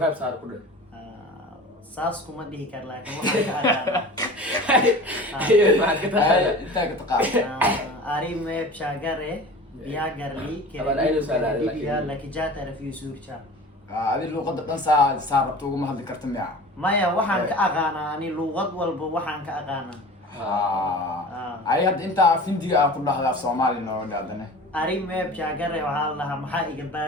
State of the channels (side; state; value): both; normal; correlation 0.38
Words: saar ku dhig saas kuma dhihi kar laakiin waxaan ka aqaanaa maxaad ka tahay Haye, intaa ka taqaan arime chagare biagarli Taban aynu salaad kerediya lakijata rafi surcha adi luqadda dhan saa rabto uguma hadli karta miya maya waxaan ka aqaanaa ani luqad walba waxaan ka aqaanaa ay hadda intaa af Hindiga aan ku dhahda af Soomaali noo dhaadane arime chagare waxaa la dhahaa maxaa iga